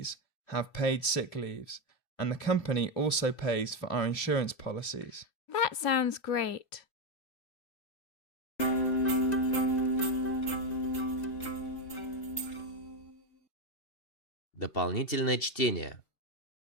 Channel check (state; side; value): late; right; 2.8 ms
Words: have paid sick leaves, and the company also pays for our insurance policies. That sounds great. Дополнительное чтение.